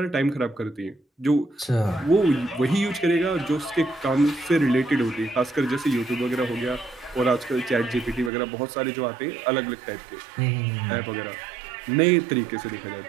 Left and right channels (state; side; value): drops out; left; at 8.3 s